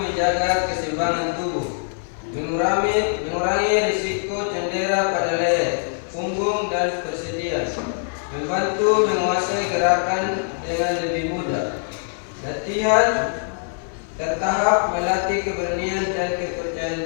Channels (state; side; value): silent; right; digital silence